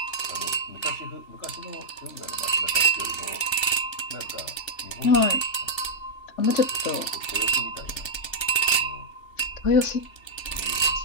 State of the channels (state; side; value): late; right; 3.4 ms